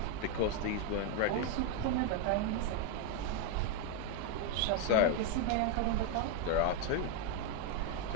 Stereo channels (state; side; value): different; both; correlation 0.01